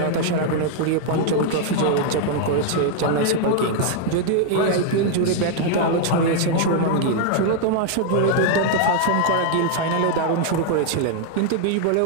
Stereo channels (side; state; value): both; different; correlation 0.00